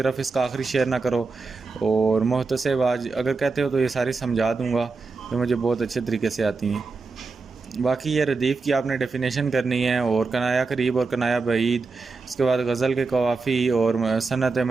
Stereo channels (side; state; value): left; quieter; 4.2 dB